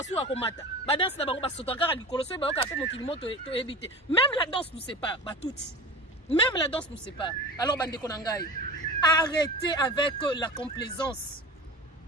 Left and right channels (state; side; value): normal; both; correlation 0.33